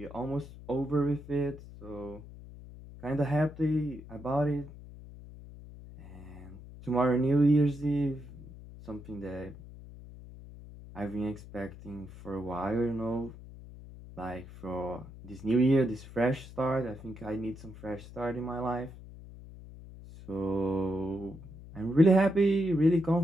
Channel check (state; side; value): noise; left; hum, 16 dB below the sound